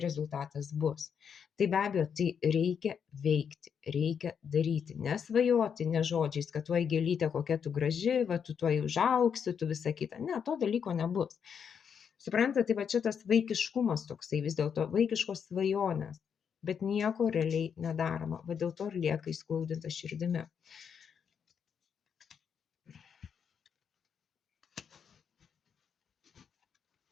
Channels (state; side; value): quieter; right; 7.2 dB